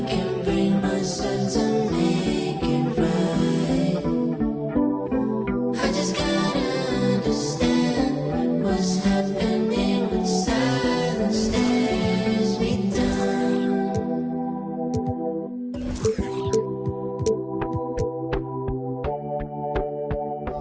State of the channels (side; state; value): both; identical; correlation 1.00